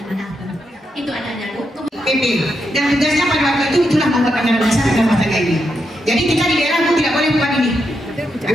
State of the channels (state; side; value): normal; both; correlation 0.83